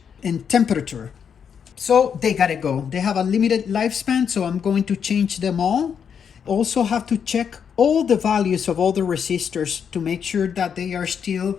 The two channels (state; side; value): quieter; right; 7.4 dB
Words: and temperature. So they gotta go. They have a limited lifespan, so I'm going to change them all. Also have to check all the values of all the resistors to make sure that they are still